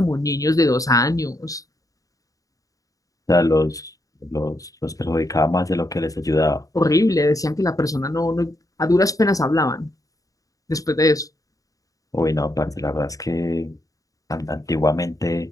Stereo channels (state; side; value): late; right; 0.17 ms